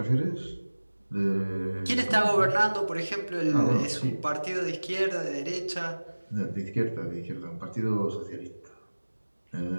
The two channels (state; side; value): inverted; both; correlation -1.00